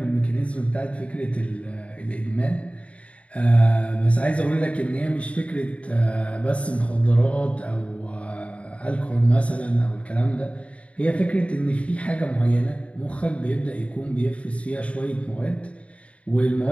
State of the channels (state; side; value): late; right; 0.063 ms